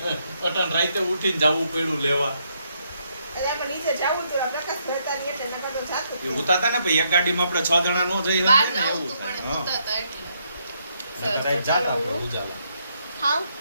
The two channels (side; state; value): both; inverted; correlation -0.75